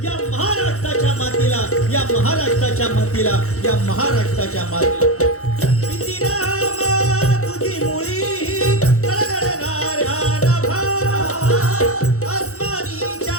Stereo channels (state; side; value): late; right; 0.64 ms